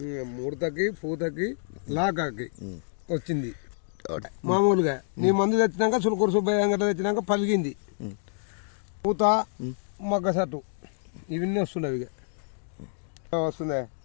ముడతకి పూతకి లాకాకి వచ్చింది మామూలుగా. నీ మందు తెచ్చినాక చులకూరు సుబ్బయ్య అంగట తెచ్చినాక పలిగింది పూత మొగ్గ సట్టు ఇవన్నీ వస్తున్నాయి. ఇక వస్తుందా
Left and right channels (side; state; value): right; silent; digital silence